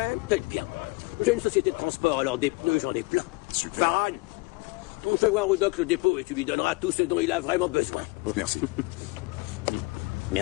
peut-être bien. J'ai une société de transport, alors des pneus, j'en ai plein. Super. Baron, on te voir au doc le dépôt et tu lui donneras tout ce dont il a vraiment besoin. Merci.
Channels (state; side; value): quieter; right; 25.8 dB